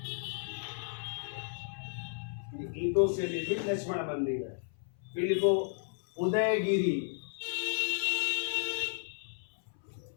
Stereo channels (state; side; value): silent; right; 55 dB below the other